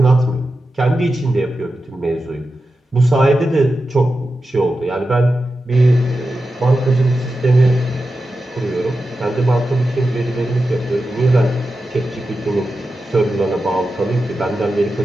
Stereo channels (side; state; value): both; normal; correlation 0.91